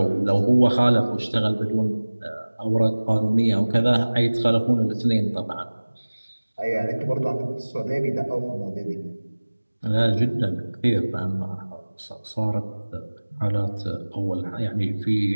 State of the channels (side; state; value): both; inverted; correlation -1.00